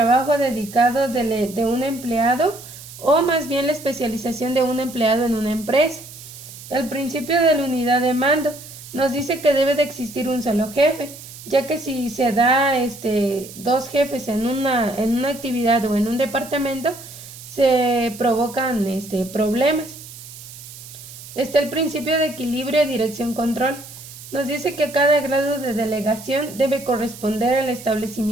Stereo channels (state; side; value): noise; right; hiss, 16 dB below the sound